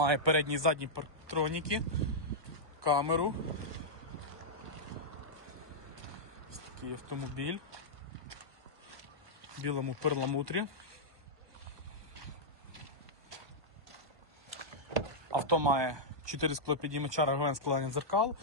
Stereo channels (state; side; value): late; left; 1.2 ms